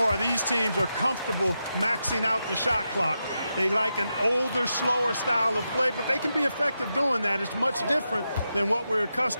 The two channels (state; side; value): inverted; both; correlation -0.87